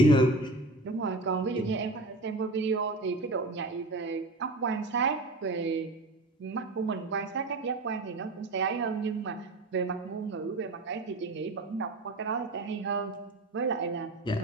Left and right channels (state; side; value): normal; both; correlation 0.31